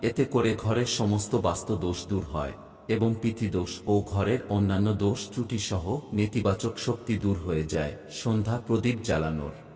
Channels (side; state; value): both; identical; correlation 1.00